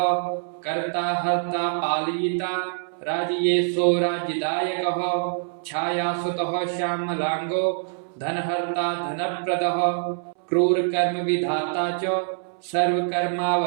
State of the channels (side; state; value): left; silent; 62 dB below the other